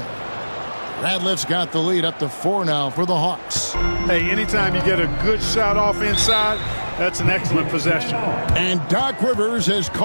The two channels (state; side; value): inverted; both; correlation -1.00